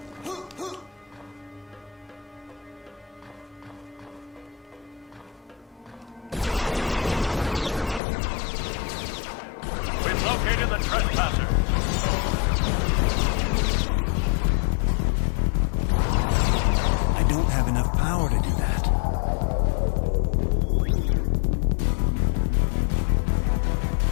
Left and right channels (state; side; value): drops out; right; at 8.0 s